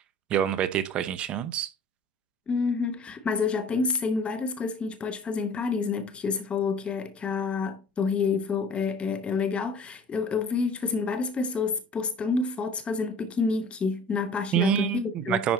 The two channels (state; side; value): normal; both; correlation 0.46